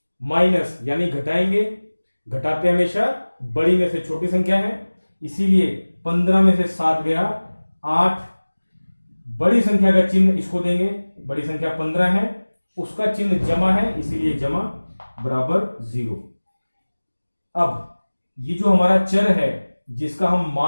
माइनस यानी घटाएंगे, घटाते हमेशा बड़ी में से छोटी संख्या है, इसीलिए 15 में से 7 गया 8। बड़ी संख्या का चिन्ह इसको देंगे, बड़ी संख्या 15 है, उसका चिन्ह जमा है, इसीलिए जमा बराबर 0। अब ये जो हमारा चर है जिसका हम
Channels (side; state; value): both; inverted; correlation -1.00